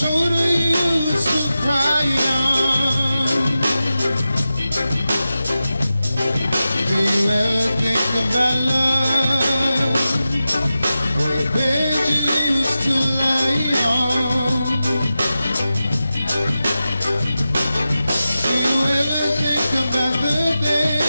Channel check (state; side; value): inverted; both; correlation -0.93